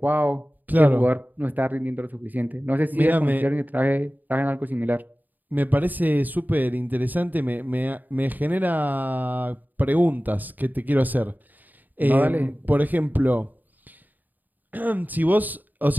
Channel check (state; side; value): late; left; 0.086 ms